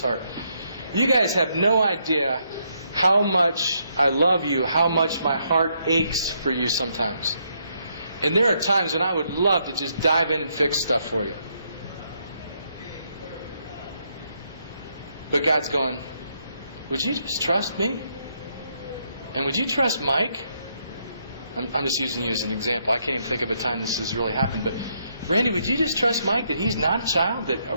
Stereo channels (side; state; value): both; inverted; correlation -0.75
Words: You guys have no idea how much I love you, how much my heart aches for you sometimes. And there are times when I would love to just dive in and fix stuff for you. But God's going, would you just trust me? And would you trust Mike? I'm just using you as an example. I can't even think of a time this has really happened. But Randy, would you just trust Mike that he's not a child?